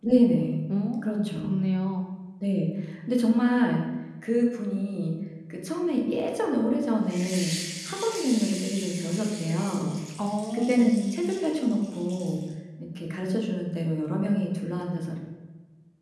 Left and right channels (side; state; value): both; identical; correlation 1.00